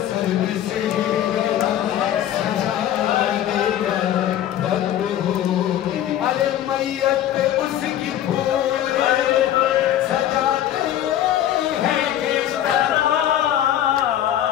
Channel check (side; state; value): right; quieter; 11.6 dB